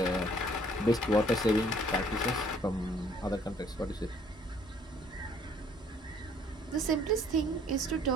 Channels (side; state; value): both; normal; correlation 0.60